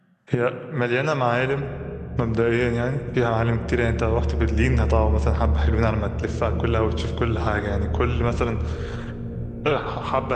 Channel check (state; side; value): identical; both; correlation 1.00